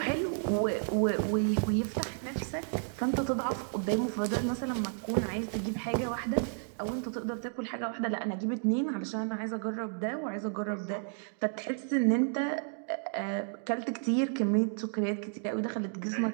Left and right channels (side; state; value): left; silent; 56 dB below the other